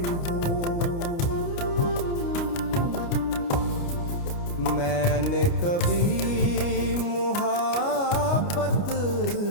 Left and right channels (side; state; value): right; late; 29 ms